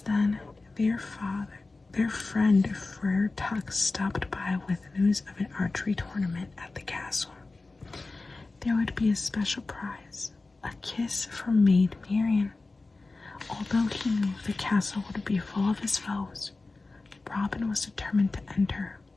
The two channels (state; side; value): quieter; right; 3.5 dB